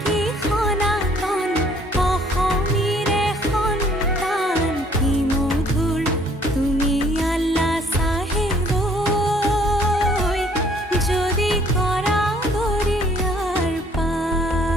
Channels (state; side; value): normal; both; correlation 0.60